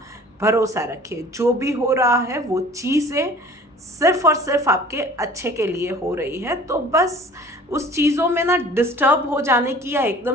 भरोसा रखिए। जो भी हो रहा है वो चीज़ें सिर्फ और सिर्फ आपके अच्छे के लिए हो रही है, तो बस उस चीज़ों में ना डिस्टर्ब हो जाने की या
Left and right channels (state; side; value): normal; both; correlation 0.48